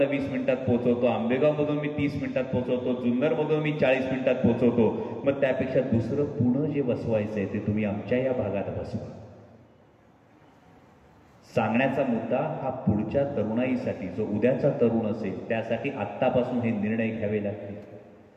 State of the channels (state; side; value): identical; both; correlation 1.00